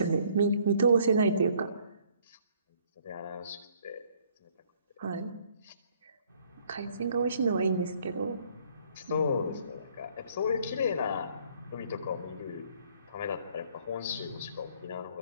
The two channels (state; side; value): inverted; both; correlation -0.61